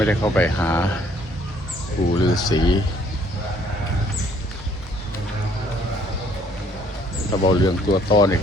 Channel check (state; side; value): normal; both; correlation 0.63